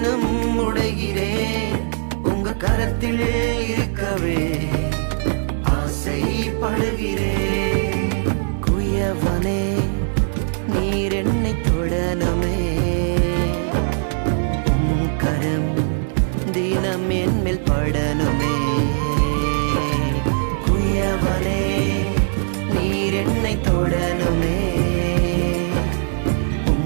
உடைகிறேன் உங்க கரத்தில் இருக்கவே ஆசைப்படுகிறேன். குயவனே நீர் என்னை தொடனுமே கரம் தினம் என் மேல் படனுமே.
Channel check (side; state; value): left; silent; digital silence